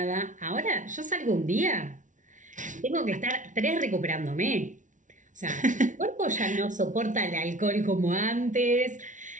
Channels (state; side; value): late; left; 0.37 ms